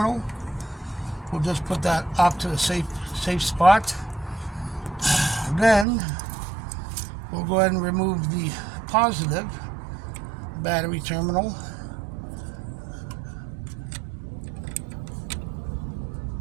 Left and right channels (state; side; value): drops out; left; at 5.9 s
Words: We'll just put that off to a safe spot. Then we'll go ahead and remove the positive battery terminal.